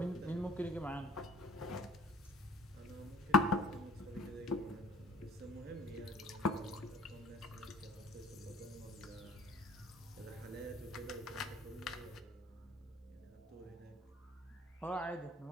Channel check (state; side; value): normal; both; correlation 0.52